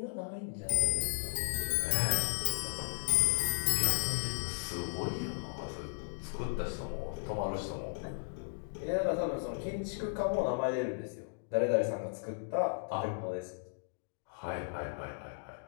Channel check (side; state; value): right; silent; digital silence